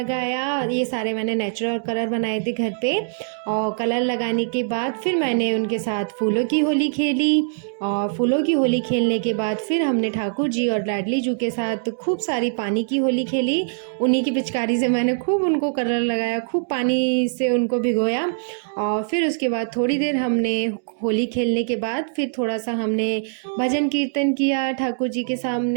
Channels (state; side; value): silent; left; digital silence